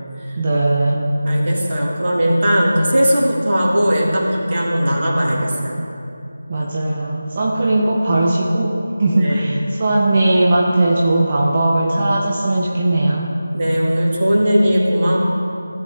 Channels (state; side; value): inverted; both; correlation -0.95